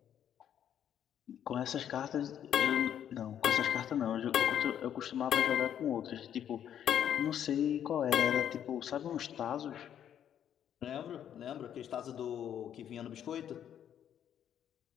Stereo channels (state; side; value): quieter; right; 9.7 dB